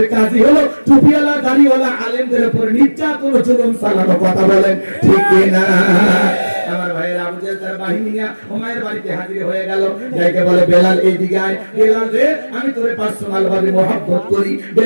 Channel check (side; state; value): both; inverted; correlation -1.00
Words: কাজই হলো টুপিওয়ালা দাড়িওয়ালা আলেমদের উপর নির্যাতন জুলুম চালানো। কথা বলেন ঠিক কিনা? আমার ভাইয়ের আবু জাহেল তার বাহিনী নিয়ে উমাইয়ের বাড়িতে হাজির হয়ে গেল, যাইকে বলে বেলাল এইদিকে আয়, বেলাল রে আমি তোরে পার্সোনাল ভাবে মহব্বত করি,